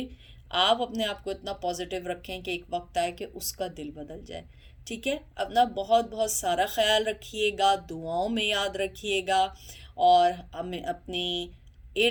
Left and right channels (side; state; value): both; identical; correlation 1.00